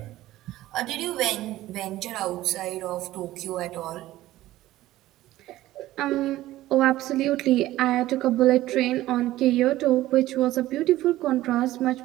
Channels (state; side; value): quieter; left; 15.7 dB